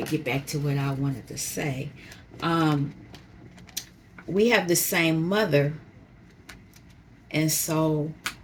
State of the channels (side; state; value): both; identical; correlation 1.00